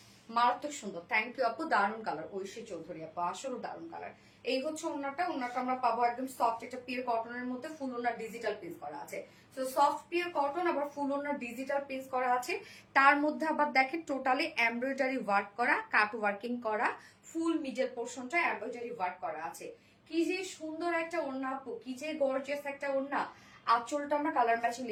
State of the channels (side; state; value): both; identical; correlation 1.00